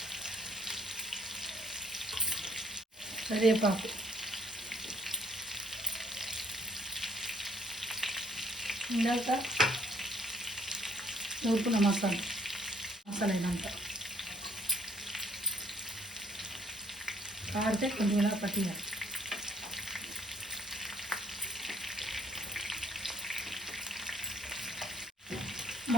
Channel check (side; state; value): both; normal; correlation 0.65